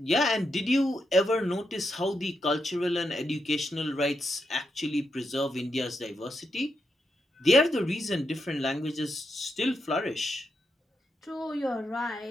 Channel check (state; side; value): normal; both; correlation 0.83